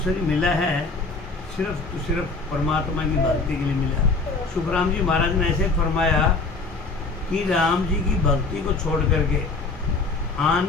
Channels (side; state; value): right; quieter; 3.8 dB